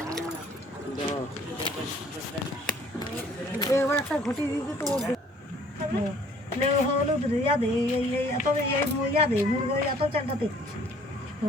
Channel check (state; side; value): normal; both; correlation 0.57